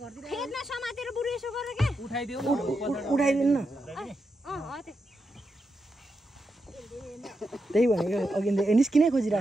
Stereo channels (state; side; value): normal; both; correlation 0.86